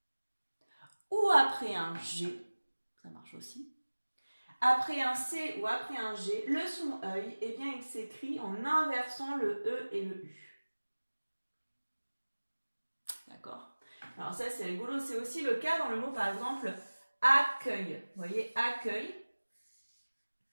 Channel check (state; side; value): inverted; both; correlation -1.00